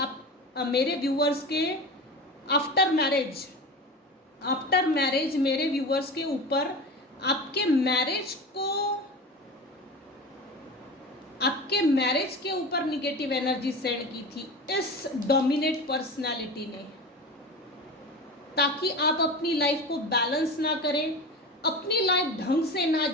मेरे व्यूअर्स के आफ्टर मैरिज मेरे व्यूअर्स के ऊपर आपके मैरिज के ऊपर निगेटिव एनर्जी सेंड की थी इस डोमिनेट पर्सनालिटी ने, ताकि आप अपनी लाइफ को बैलेंस ना करें, अपनी लाइफ ढंग से ना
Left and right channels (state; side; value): normal; both; correlation 0.29